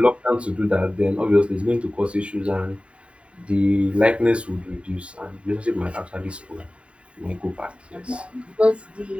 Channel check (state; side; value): late; left; 0.060 ms